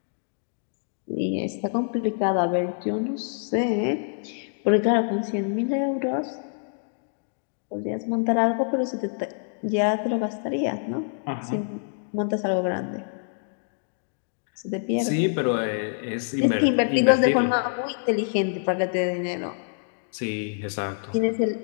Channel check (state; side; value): silent; right; digital silence